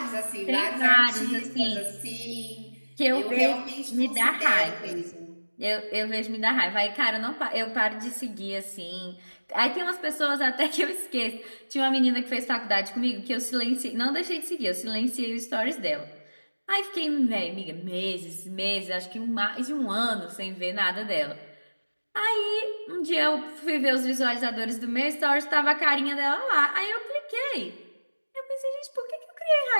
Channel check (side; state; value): both; inverted; correlation -1.00